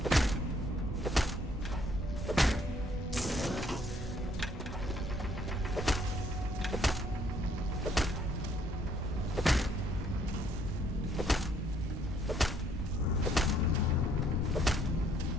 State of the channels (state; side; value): normal; both; correlation 0.66